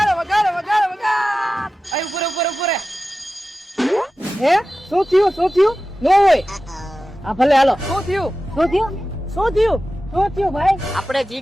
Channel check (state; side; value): normal; both; correlation 0.94